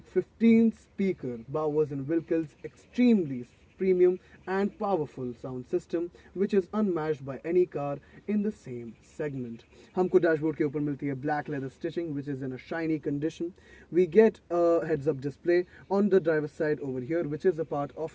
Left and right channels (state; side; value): identical; both; correlation 1.00